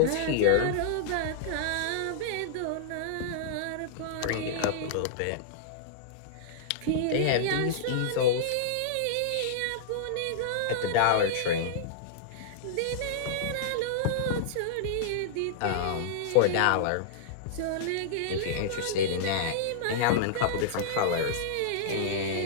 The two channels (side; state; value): both; different; correlation -0.02